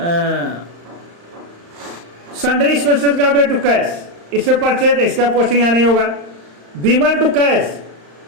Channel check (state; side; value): late; left; 35 ms